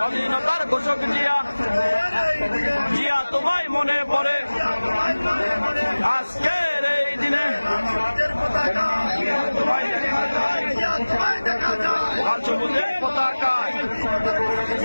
ঘোষক জিয়া জিয়া তোমায় মনে পড়ে আজকের এই দিনে তোমায় দেখা যায় লাল সবুজের পতাকায়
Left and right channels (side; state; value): both; inverted; correlation -1.00